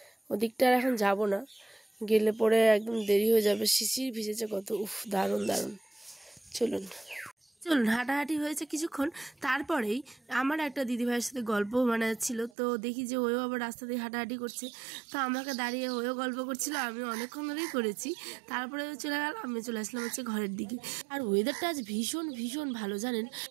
ওদিকটা আর এখন যাব না, গেলে পরে একদম দেরি হয়ে যাবে। শিশির ভিজেছে কত, উফ দারুণ দারুণ। চলুন হাঁটাহাঁটি হয়েছে কিছুক্ষণ, তারপরেই আমার একটা দিদিভাইয়ের সাথে গল্প ছিল। তো দেখি যে ওও আবার রাস্তা দিয়ে হাঁটাহাঁটি করছে, তো আমাকে দাঁড়িয়ে ওও গল্প করছিল, আমি অনেকক্ষণ ধরেই করেছি। তারপরে চলে গেল, আমি চলে আসলাম হচ্ছে ঘরের দিকে। আর ওয়েদারটা আজ ভীষণ ভীষণ ভালো, জানেন,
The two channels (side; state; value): left; drops out; at 12.5 s